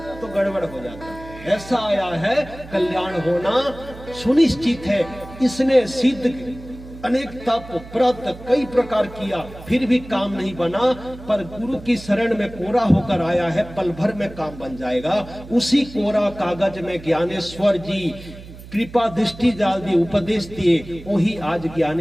तो गड़बड़ हो जाता। ऐसा आया है कल्याण होना सुनिश्चित है। इसने सिद्ध अनेक तप व्रत कई प्रकार किया, फिर भी काम नहीं बना, पर गुरु की शरण में कोरा होकर आया है, पल भर में काम बन जाएगा। उसी कोरा कागज में ज्ञानेश्वर जी कृपा दृष्टि डाल दी, उपदेश दिए, वही आज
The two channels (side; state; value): right; noise; hum, 16 dB below the sound